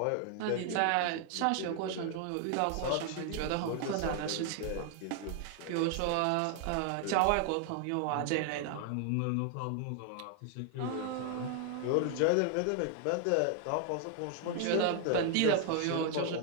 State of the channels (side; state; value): both; different; correlation 0.00